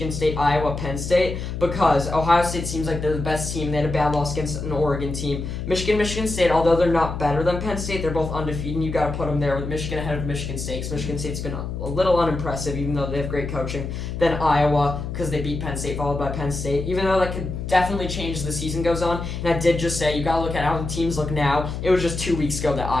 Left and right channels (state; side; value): noise; left; hum, 5 dB below the sound